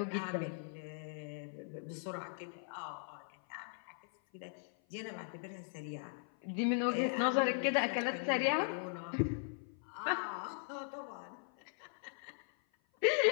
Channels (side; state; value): right; silent; 52 dB below the other